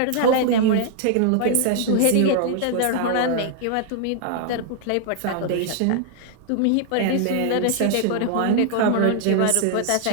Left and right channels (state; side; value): different; both; correlation -0.01